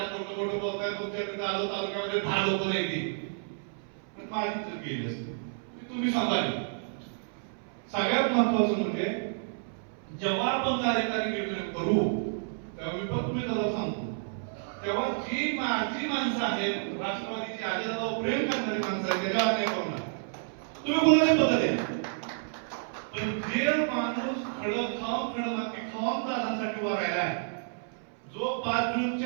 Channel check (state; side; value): silent; left; 58 dB below the other